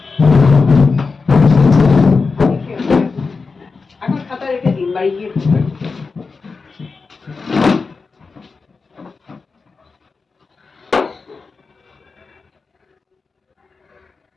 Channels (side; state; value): right; quieter; 4.5 dB